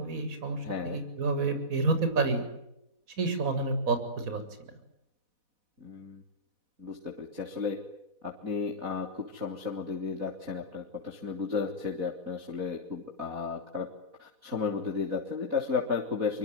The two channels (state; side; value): late; left; 4.1 ms